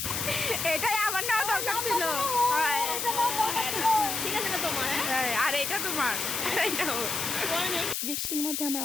এটাই আমার নেওয়া দরকার ছিল। আর এটা তোমার। বৃষ্টির মধ্যে আমরা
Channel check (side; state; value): left; noise; hiss, 2 dB below the sound